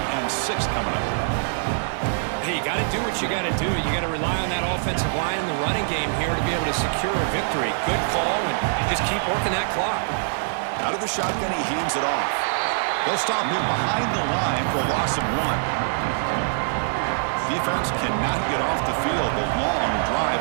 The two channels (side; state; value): left; silent; 63 dB below the other